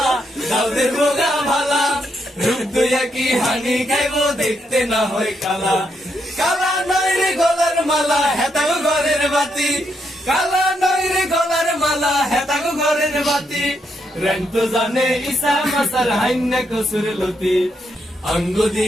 দাউদের বোগা ভালা, রুজুয়া কি হানি খাইবো দেখতে না হয় কালা। কালা নয় রে গলার মালা হেতাগো ঘরের বাতি, কালা নয় রে গলার মালা হেতাগো ঘরের বাতি, রন্ত জানে ইসা মাসার হাইন্না কসুর লতি, অঙ্গ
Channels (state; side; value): normal; both; correlation 0.79